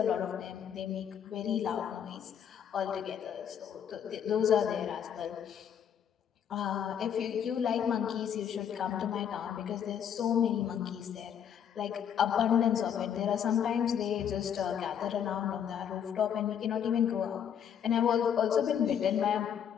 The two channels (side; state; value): right; quieter; 8.6 dB